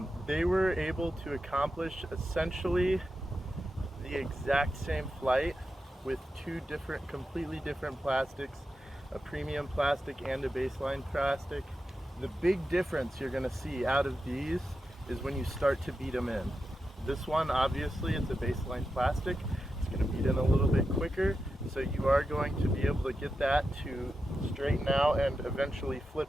They were able to accomplish essentially the exact same flight with 2 completely different plastics, a premium plastic and a baseline plastic. The big difference you're going to see out of these is when you start to beat them in. This one, obviously, it's a baseline plastic. It's going to beat in a little bit quicker, so you are going to be able to get that to straighten out and eventually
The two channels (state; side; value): normal; both; correlation 0.89